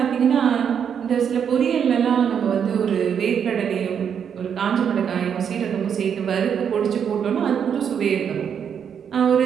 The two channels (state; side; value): quieter; left; 7.8 dB